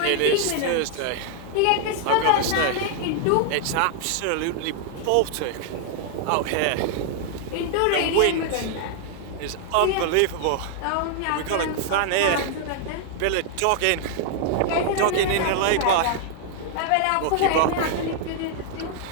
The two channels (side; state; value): both; different; correlation 0.00